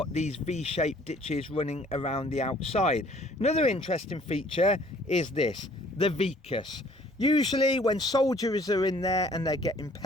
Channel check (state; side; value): normal; both; correlation 0.57